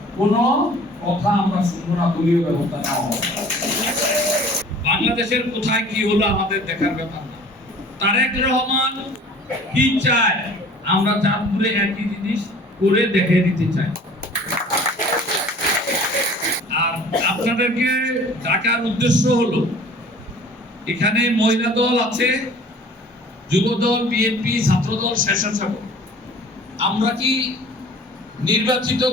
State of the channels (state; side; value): normal; both; correlation 0.47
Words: কোনো কথা আমরা শুনবো না, দলীয় ব্যবস্থা নেওয়া হবে। বাংলাদেশের কোথায় কি হলো আমাদের দেখার ব্যাপার না। তারেক রহমান কি চায়, আমরা চাঁদপুরে একই জিনিস করে দেখে দিতে চাই। আর আপনাদেরকে ডাকার উদ্দেশ্য হলো, এখানে মহিলা দল আছে, যুব দল, বিএনপি, ছাত্র দল, স্বেচ্ছাসেবক। আমরা কি নির্বাচিত